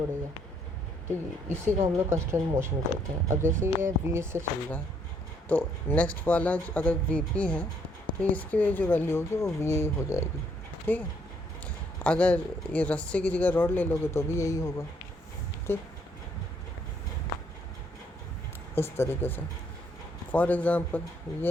तो इसी को हम लोग कंस्टेंट मोशन कहते हैं. अब जैसे ये वी से चल रहा है तो नेक्स्ट वाला अगर वी पी है तो इसकी जो वैल्यू होगी वो वी हो जाएगी. ठीक है, अगर ये रस्से की जगह रॉड ले लोगे तो भी यही होगा. ठीक, इस तरीके से. फॉर एग्ज़ाम्पल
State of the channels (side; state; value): both; normal; correlation 0.69